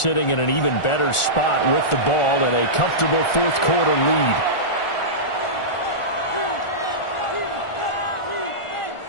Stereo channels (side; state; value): right; late; 1.4 ms